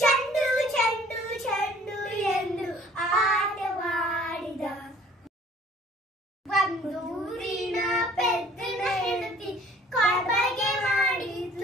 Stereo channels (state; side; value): normal; both; correlation 0.54